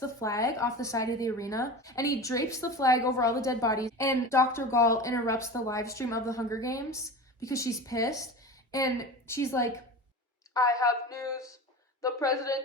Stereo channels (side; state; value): both; normal; correlation 0.31